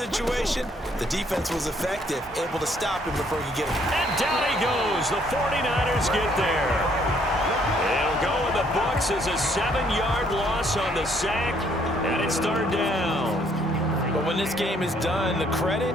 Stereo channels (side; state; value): both; normal; correlation 0.66